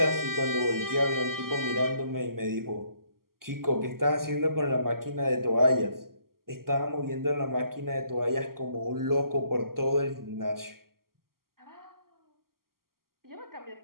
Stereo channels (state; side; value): late; left; 0.92 ms